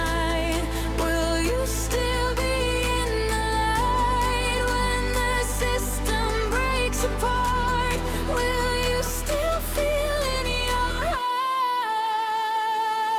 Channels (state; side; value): identical; both; correlation 1.00